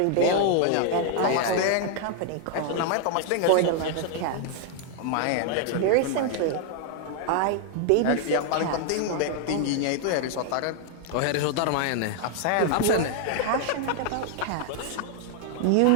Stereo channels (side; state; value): both; different; correlation 0.00